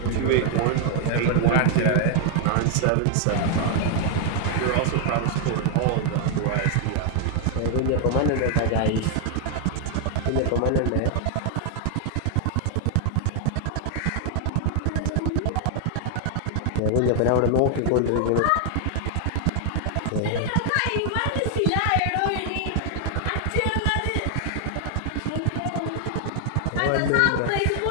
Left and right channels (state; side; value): different; both; correlation 0.00